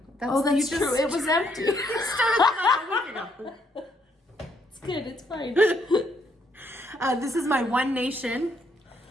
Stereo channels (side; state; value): both; normal; correlation 0.72